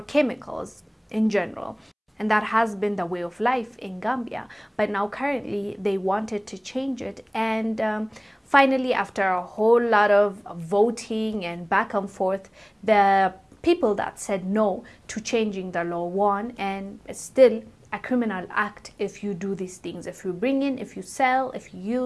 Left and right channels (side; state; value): both; identical; correlation 1.00